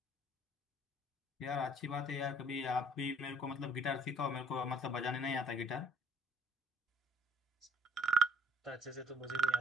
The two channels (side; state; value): both; normal; correlation 0.56